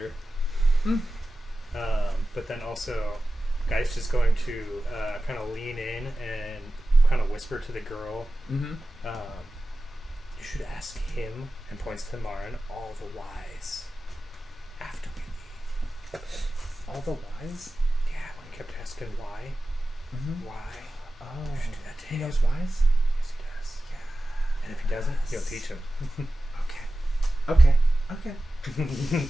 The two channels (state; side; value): normal; both; correlation 0.94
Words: But then also, Geist is going to kind of lean in and kind of whisper to the girl. You should ask him, and points to Marin, all the whys after we leave. All the whys? Yeah, when he kept asking why. Why? Oh, You should do that to he him. knows whys? Yes, he does. Yeah. And if he doesn't, you'll teach him. Okay.